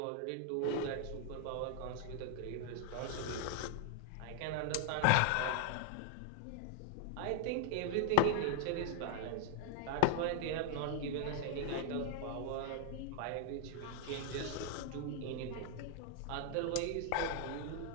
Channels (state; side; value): different; both; correlation -0.01